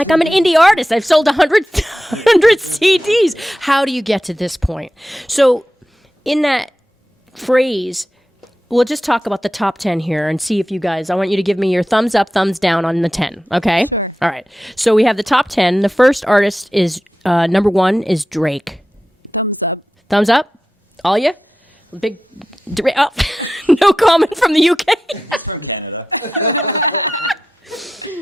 I'm an indie artist. I've sold 100 CDs. How do you get to this point? So in that phrase, we'll just talk about the top 10 here and see if you guys, I want you to give me your thumbs up, thumbs down on the 10, okay? Sure. All right. So we have the top 10. The first artist is, number 1 is Drake. Thumbs up. Thumbs up? All you? Big, oh, no comment from the UK. He's from Canada.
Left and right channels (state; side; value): normal; both; correlation 0.91